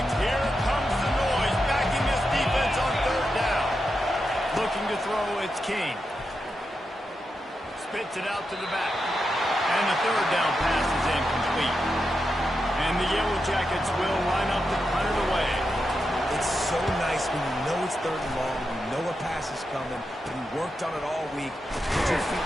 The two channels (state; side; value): normal; both; correlation 0.87